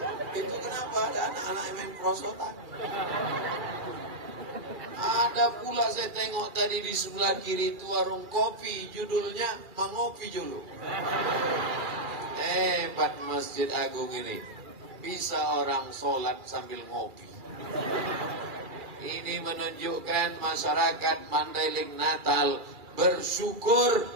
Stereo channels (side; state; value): left; late; 2.4 ms